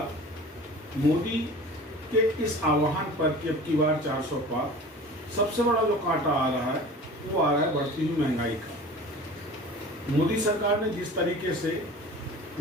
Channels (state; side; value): normal; both; correlation 0.40